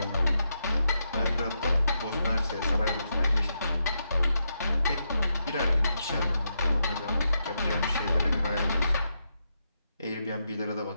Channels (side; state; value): both; inverted; correlation -0.83